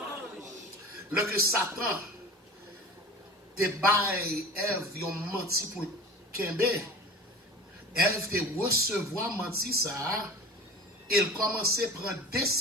Le que Satan te baille, Ève, ils ont menti pour Kembe. Ève te recevoir menti ça, il commençait à prendre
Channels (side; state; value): both; normal; correlation 0.37